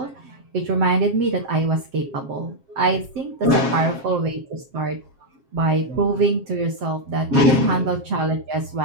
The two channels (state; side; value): late; left; 7.4 ms